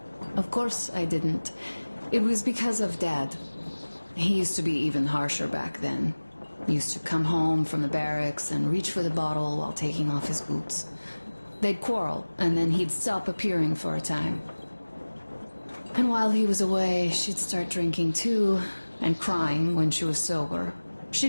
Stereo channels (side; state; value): both; inverted; correlation -1.00